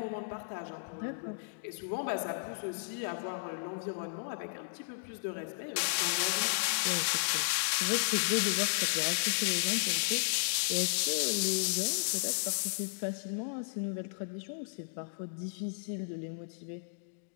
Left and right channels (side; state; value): right; silent; digital silence